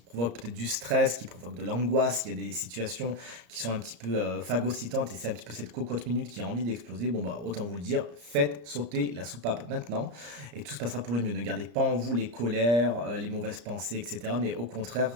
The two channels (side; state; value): left; late; 34 ms